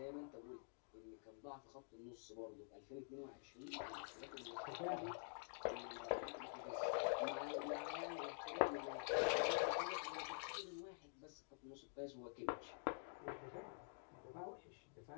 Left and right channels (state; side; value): silent; right; digital silence